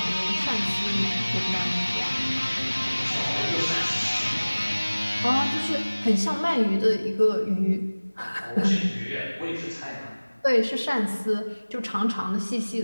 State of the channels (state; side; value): inverted; both; correlation -1.00